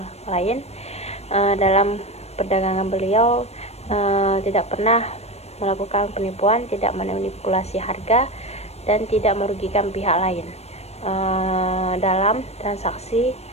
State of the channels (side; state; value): right; late; 0.31 ms